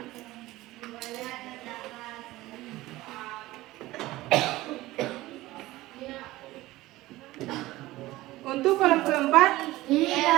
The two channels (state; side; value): quieter; left; 17.8 dB